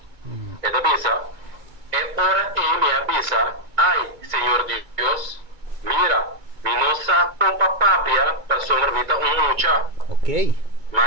Esta avisa. Ahora me avisa. Ay, Señor Dios, mira, mi no sa pompa papia para sombra mucha. Ok.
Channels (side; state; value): left; late; 2.3 ms